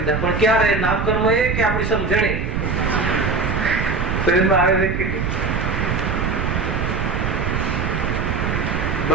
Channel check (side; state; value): right; noise; rumble, 1 dB below the sound